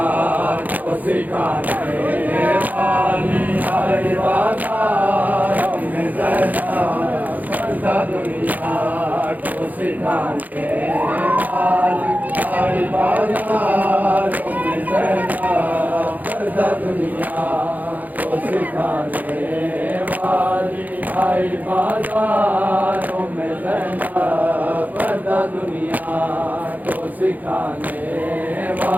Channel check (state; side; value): late; left; 0.081 ms